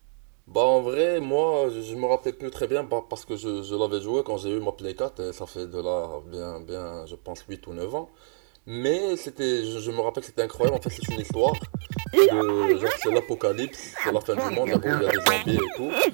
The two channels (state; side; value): silent; left; digital silence